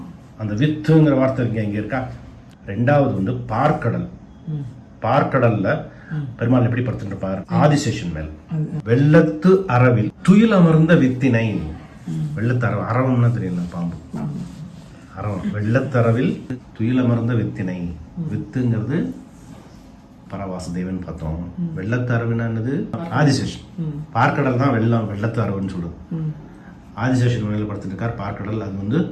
அந்த வித்துங்கிற வார்த்தை இங்க இருக்கா. 2வது வந்து பார்க்கடல். பார்க்கடல்ல பெருமாள் எப்படி படுத்துட்டு இருப்பார்? ஆதிசேஷன் மேல். வெள்ளத்து அரவில் துயில் அமர்ந்த வித்தினை. வெள்ளத்து அரவம்னா தெரியல, பாம்பு அரவம். வெள்ளத்தரவில் துயில் அமர்ந்த வித்தினை. வித்துங்கிறது பரவாசுதேவன் பார்த்தோம். வெள்ளத்து அரவுனா என்னது? ஆதிசேஷன். பார்க்கடல் தான் வெள்ளத்து அரவுன்னு சொல்லுது. ஆதிசேஷன் மேல படுத்துட்டு இருக்கார் பார்க்கடல். அது வந்து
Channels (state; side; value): identical; both; correlation 1.00